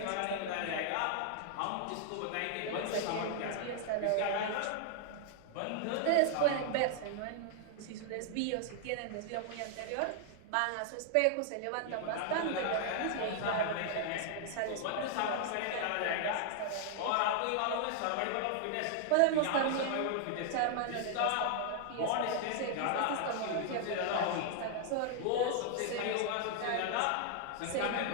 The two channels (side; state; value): both; different; correlation 0.00